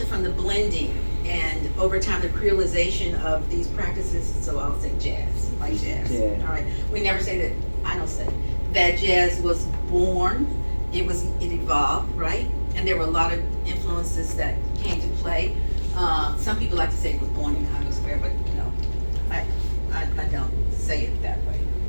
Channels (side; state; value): both; inverted; correlation -1.00